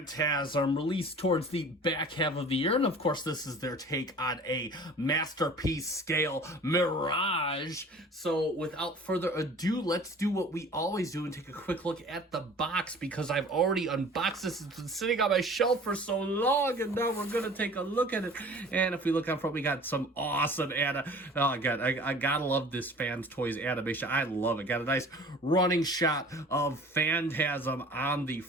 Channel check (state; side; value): normal; both; correlation 0.45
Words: released towards the back half of the year. And of course, this is their take on a masterpiece scale Mirage. So without further ado, let's do what we always do and take a quick look at the box, because I've already unboxed this. It's been sitting on my shelf for so long, and now we're going to take a look at it. And if we look out front, we got some awesome oh god, I gotta love this Fans Toys animation. I love it. Got a nice running shot of Phantasm on the